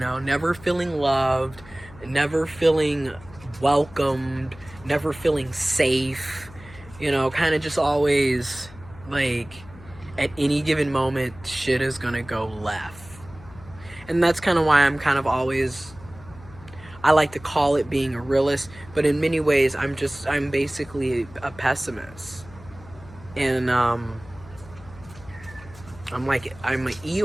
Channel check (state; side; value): noise; left; hum, 20 dB below the sound